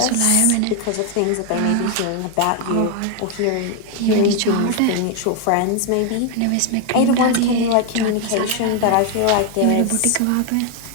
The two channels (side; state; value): both; different; correlation 0.01